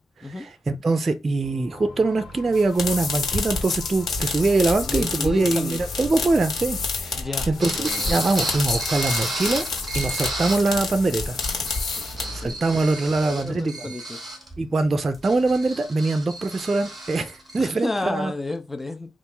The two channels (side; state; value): both; normal; correlation 0.88